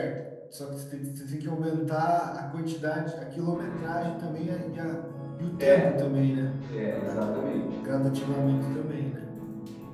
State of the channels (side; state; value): both; identical; correlation 1.00